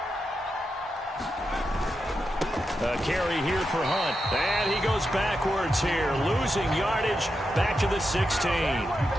A carry here for Hunt. And he goes backwards here, losing yardage back to the 16.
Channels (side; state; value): both; normal; correlation 0.87